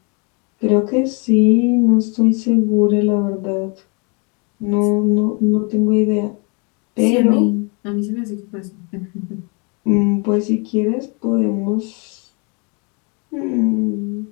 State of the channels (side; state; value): right; quieter; 33.4 dB